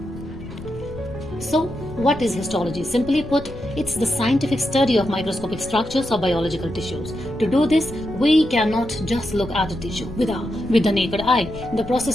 So, what is histology? Simply put, it's the scientific study of microscopic structures of biological tissues. To do this, we cannot just look at a tissue with the naked eye. The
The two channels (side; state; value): left; noise; rumble, 14 dB below the sound